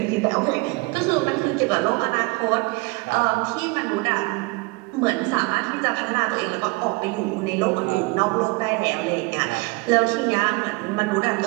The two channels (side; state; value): left; quieter; 25.5 dB